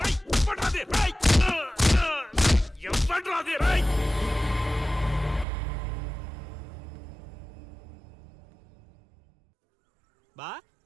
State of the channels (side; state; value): left; drops out; at 5.5 s